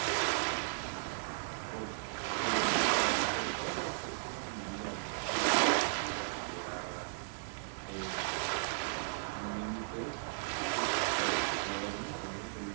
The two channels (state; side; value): silent; left; digital silence